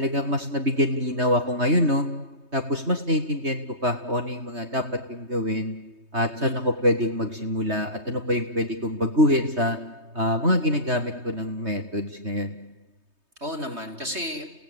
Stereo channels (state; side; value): late; left; 3.2 ms